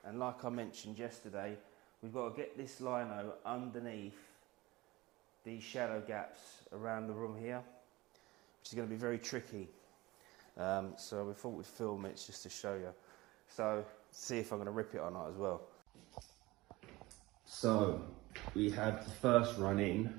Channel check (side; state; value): left; quieter; 20.2 dB